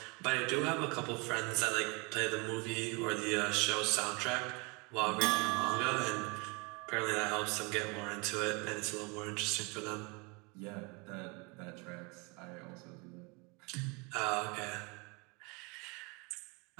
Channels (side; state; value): left; quieter; 29.8 dB